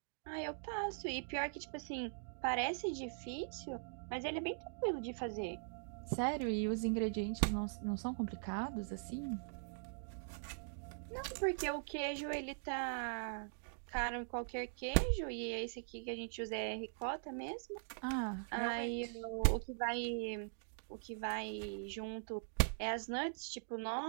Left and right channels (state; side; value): silent; left; digital silence